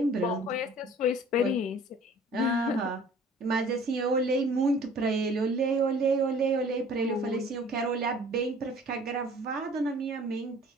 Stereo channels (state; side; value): normal; both; correlation 0.50